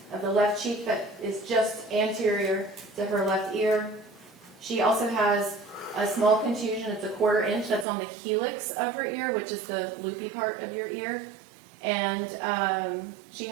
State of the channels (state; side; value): drops out; left; at 7.9 s